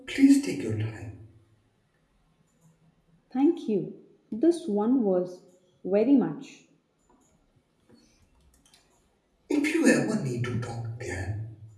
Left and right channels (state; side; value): identical; both; correlation 1.00